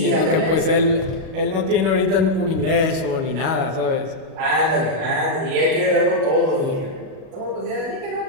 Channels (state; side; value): late; left; 37 ms